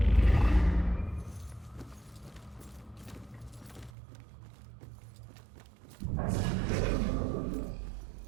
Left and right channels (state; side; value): drops out; left; at 3.9 s